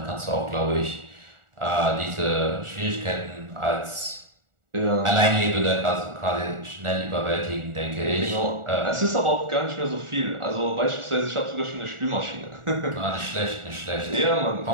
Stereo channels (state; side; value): late; left; 1.4 ms